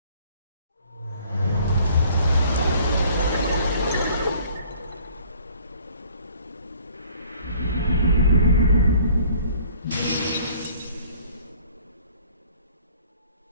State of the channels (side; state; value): both; inverted; correlation -0.55